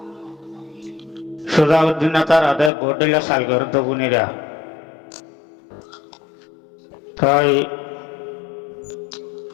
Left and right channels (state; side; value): drops out; right; at 2.7 s